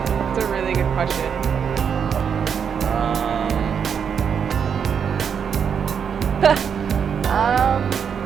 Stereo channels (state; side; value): quieter; left; 7.2 dB